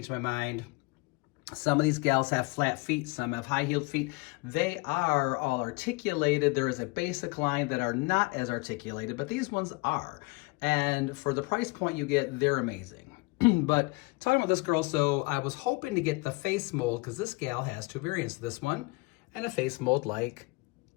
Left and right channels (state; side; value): quieter; right; 26.0 dB